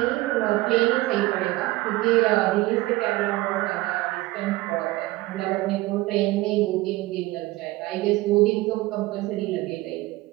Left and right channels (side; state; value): left; quieter; 19.0 dB